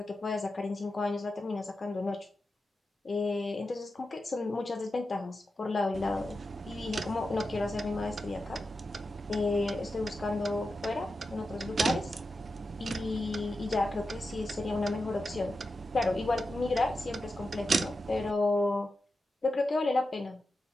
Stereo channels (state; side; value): normal; both; correlation 0.90